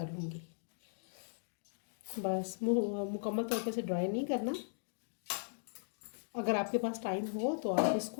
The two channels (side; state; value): right; silent; digital silence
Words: लूँगी। बस मुकम्मल तौर पे से ड्राई नहीं करना। अगर आपके पास टाइम हो तो आप